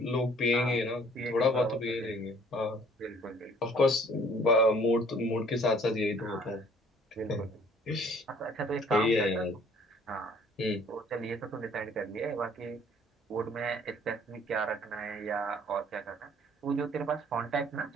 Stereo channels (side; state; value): both; normal; correlation 0.56